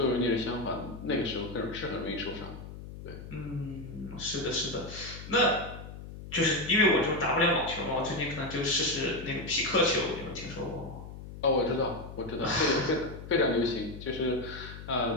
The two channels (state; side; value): noise; left; hum, 12 dB below the sound